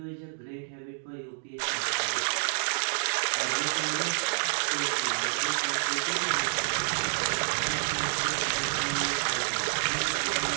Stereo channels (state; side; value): silent; left; digital silence